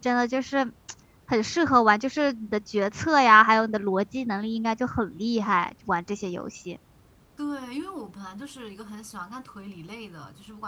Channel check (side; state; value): both; identical; correlation 1.00